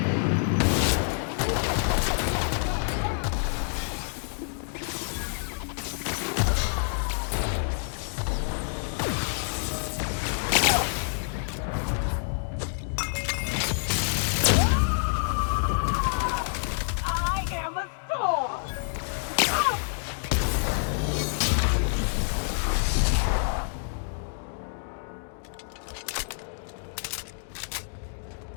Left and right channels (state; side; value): silent; right; digital silence